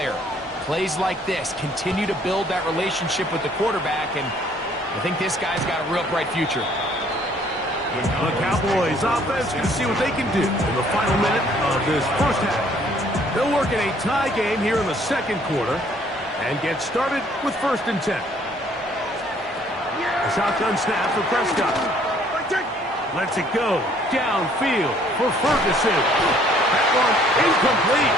Plays like this continue to build that relationship with the quarterback, and I think this guy's got a real bright future. The Cowboys offense can see what they can do in the final minute of this first half. They'll work in a tie game here in the second quarter and get started with 1st and 10. A shotgun snap for Prescott. Lets it go downfield for Ferguson. That one incomplete.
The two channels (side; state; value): both; normal; correlation 0.61